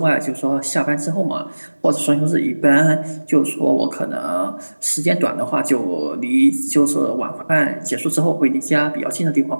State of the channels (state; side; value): inverted; both; correlation -1.00